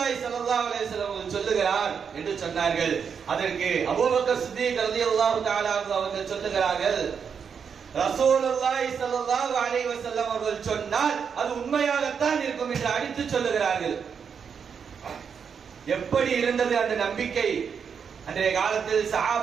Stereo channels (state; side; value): quieter; left; 6.7 dB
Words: ஸல்லல்லாஹு அலைஹி வஸல்லம் அவர்கள் சொல்லுகிறார் என்று சொன்னார்கள். அதற்கு அபூபக்கர் சித்தீக் ரலியல்லாஹு தஆலா அவர்கள் சொல்லுகிறார்கள், ரசூலுல்லாஹி ஸல்லல்லாஹு அலைஹி வஸல்லம் அவர்கள் சொன்னால் அது உண்மையாகத்தான் இருக்கும் என்று அடித்து சொல்லுகிறார்கள். எப்படி இருந்தது அந்த நம்பிக்கை? அன்றைய காலத்தில்